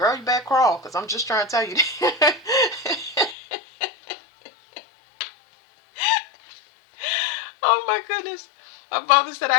you better crawl, because I'm just trying to tell you. Oh, my goodness. My father said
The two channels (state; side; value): drops out; right; at 3.4 s